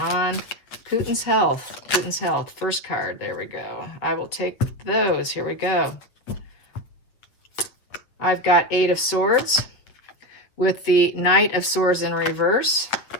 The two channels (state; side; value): late; right; 8.1 ms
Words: Putin's health. Putin's health. First card. There we go. I will take those. Here we go. I've got 8 of Swords with the Knight of Swords in reverse,